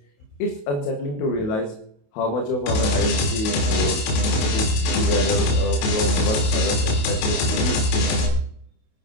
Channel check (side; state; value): right; late; 28 ms